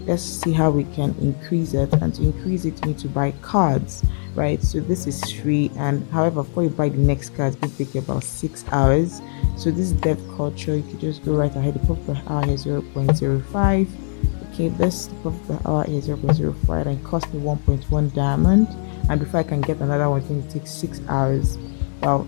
let's see how we can increase it. And to increase it, you need to buy cards, right? So this is free, and however, before you buy the next card, it's going to take you about 6 hours. So this is dev culture. You can just go right ahead. The profit per hour is 0.05. Okay, this profit per hour is 0.05 and cost me 1.1 diamond. And before I can get another one, it's going to take 6 hours. Well,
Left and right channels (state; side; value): silent; right; digital silence